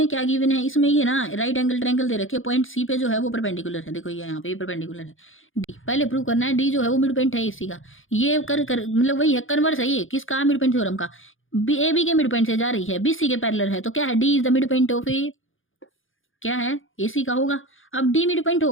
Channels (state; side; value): late; right; 0.58 ms